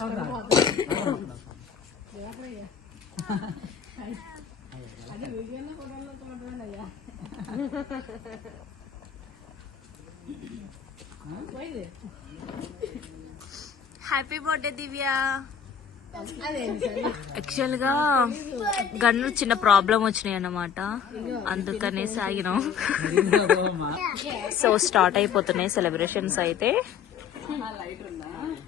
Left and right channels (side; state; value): right; quieter; 7.4 dB